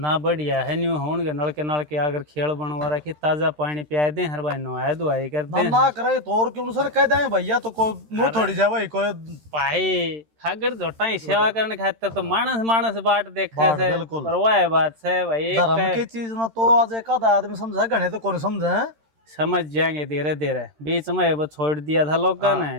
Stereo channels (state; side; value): late; left; 13 ms